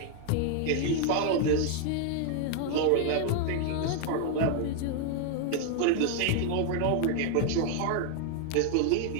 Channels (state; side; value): different; both; correlation 0.00